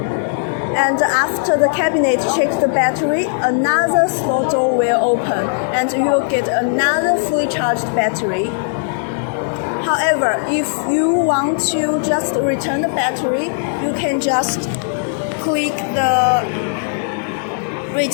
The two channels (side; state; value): right; silent; 68 dB below the other